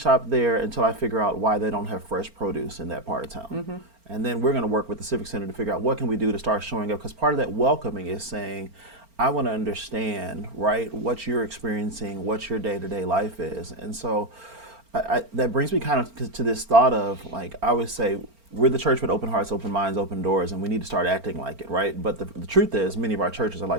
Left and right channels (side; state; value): left; late; 4.4 ms